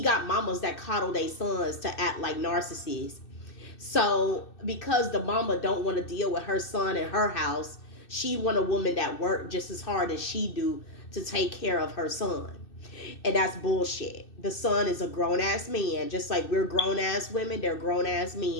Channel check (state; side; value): late; right; 2.6 ms